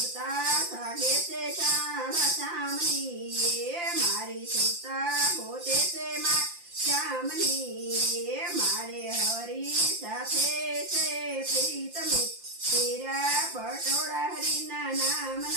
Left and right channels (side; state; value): left; late; 5.8 ms